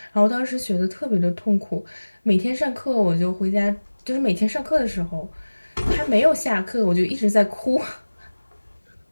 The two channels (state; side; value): inverted; both; correlation -1.00